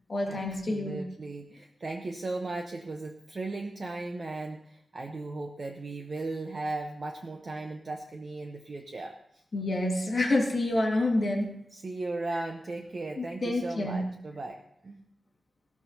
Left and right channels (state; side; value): normal; both; correlation 0.90